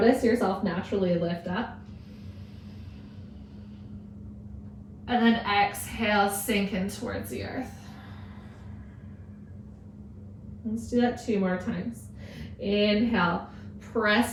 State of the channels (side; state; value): both; identical; correlation 1.00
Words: yourself naturally lift up. And then exhale, sink in towards the earth. Let's do that 2 more times. Inhale,